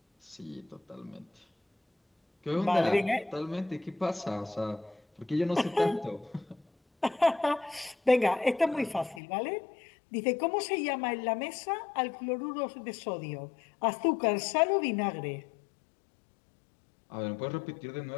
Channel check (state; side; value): drops out; right; at 9.2 s